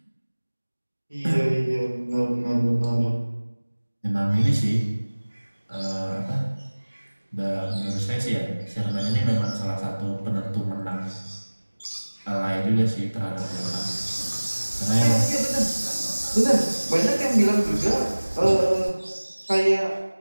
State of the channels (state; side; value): inverted; both; correlation -1.00